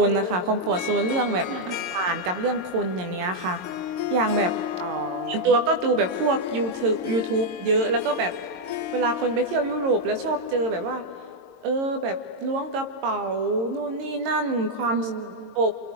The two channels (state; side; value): late; left; 22 ms